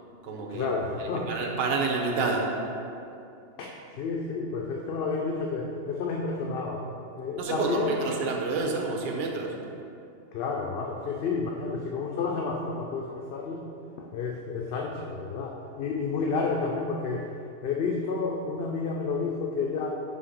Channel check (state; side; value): late; right; 2.8 ms